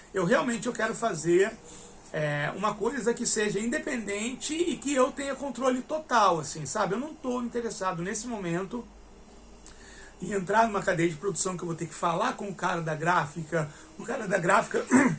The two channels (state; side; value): identical; both; correlation 1.00